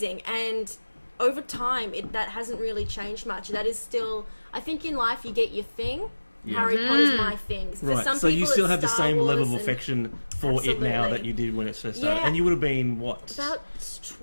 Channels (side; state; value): both; inverted; correlation -1.00